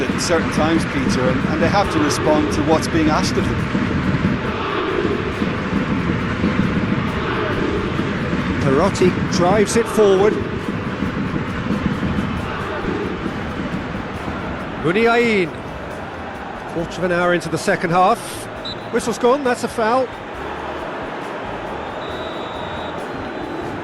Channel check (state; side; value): identical; both; correlation 1.00